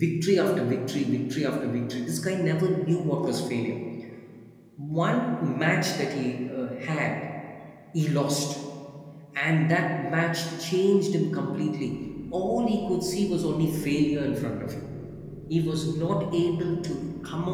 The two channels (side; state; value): both; identical; correlation 1.00